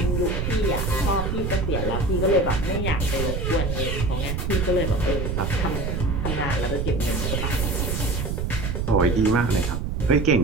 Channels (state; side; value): noise; right; rumble, 1 dB below the sound